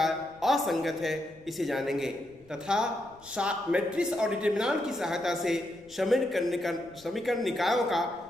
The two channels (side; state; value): left; noise; rumble, 27 dB below the sound